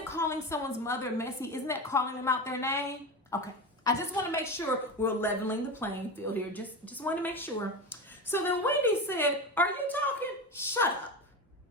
someone's mother messy? Isn't that calling them out their name? Okay. I just want to make sure we're leveling the playing field here. Just want to make sure. So then Wendy said, "Are you talking? Shut up."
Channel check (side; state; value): both; normal; correlation 0.22